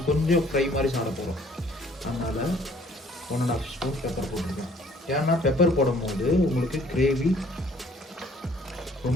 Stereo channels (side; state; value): both; normal; correlation 0.59